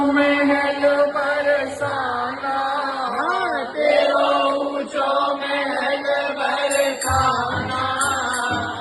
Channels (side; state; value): both; identical; correlation 1.00